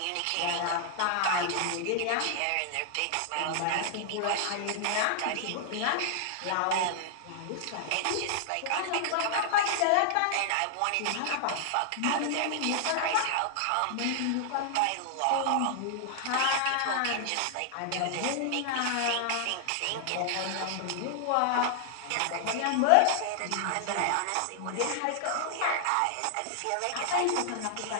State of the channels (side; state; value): both; different; correlation -0.01